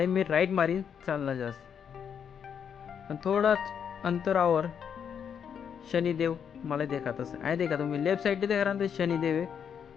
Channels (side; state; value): right; quieter; 7.7 dB